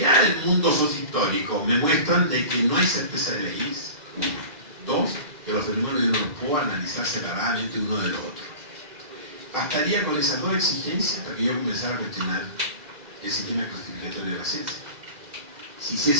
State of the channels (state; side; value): late; left; 2.0 ms